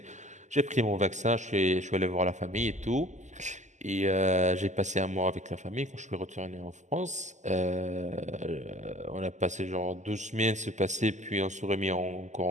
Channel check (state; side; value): late; left; 0.34 ms